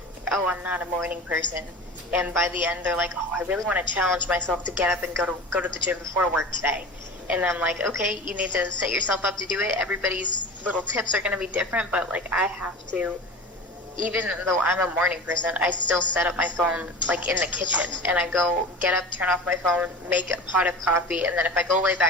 oh, I'm not a morning person, and by the end they're like, oh, I really want to challenge myself to get up and go to the gym before work today. And I'm like, okay, you need to set yourself up to do it. Everybody's little tips are going to be different, but like, I have to, even though I'm a morning person, I still set up my phone like in the kitchen, and I go get up, turn off my phone, make a pot of coffee, and then if I go lay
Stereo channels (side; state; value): both; normal; correlation 0.33